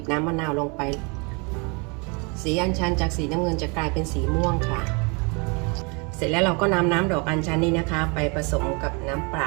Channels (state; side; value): quieter; left; 31.8 dB